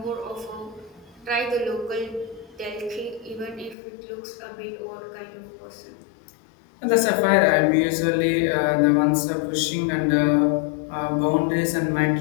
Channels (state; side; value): drops out; right; at 3.8 s